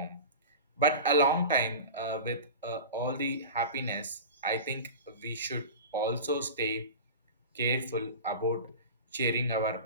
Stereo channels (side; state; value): both; inverted; correlation -0.31